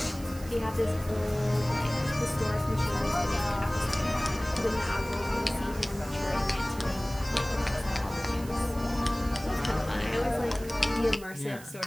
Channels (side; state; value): right; noise; hiss, 18 dB below the sound